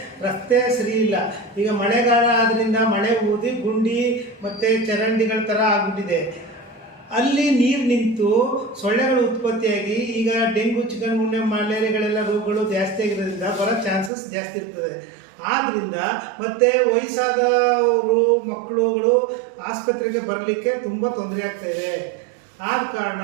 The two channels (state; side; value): drops out; left; at 14.1 s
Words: ರಸ್ತೆ ಸರಿ ಇಲ್ಲ. ಈಗ ಮಳೆಗಾಲ ಆದ್ರಿಂದ ಮಳೆ ಊದಿ ಗುಂಡಿ ಮತ್ತು ಚರಂಡಿಗಳ ಥರ ಆಗಿಬಿಟ್ಟಿದೆ. ಅಲ್ಲಿ ನೀರು ನಿಂತು ಸೊಳ್ಳೆಗಳು ಉತ್ಪತ್ತಿಯಾಗಿ ಈಗ ಡೆಂಗು, ಚಿಕನ್ ಗುನ್ಯಾ, ಮಲೇರಿಯಾಗಳೆಲ್ಲ ರೋಗಗಳು ಜಾಸ್ತಿ ಆಗಿರೋದ್ರಿಂದ ಬರೋ ಚಾನ್ಸಸ್ ಜಾಸ್ತಿ ಇರ್ತದೆ. ಆದ್ದರಿಂದ ಮತ್ತು ವಯಸ್ಸಾದವರು ಮಕ್ಕಳುಗಳು ಆಸ್ಪತ್ರೆಗೆ ಬರಲಿಕ್ಕೆ ತುಂಬ ತೊಂದರೆ ಆಗ್ತಾಯಿದೆ. ಆದ ಕಾರಣ